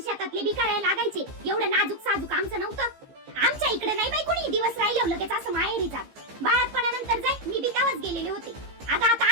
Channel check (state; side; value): late; left; 15 ms